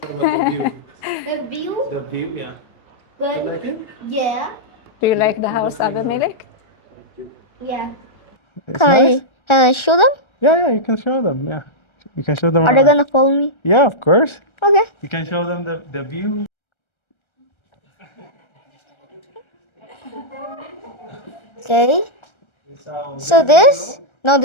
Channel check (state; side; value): late; right; 1.3 ms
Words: Do you like the house, Abimelech? Yeah. Can I show them? Yeah, you can show them. Yeah, you can show them. Are they gonna follow me? Yeah, of course. Okay. You can show them the view. Okay. So this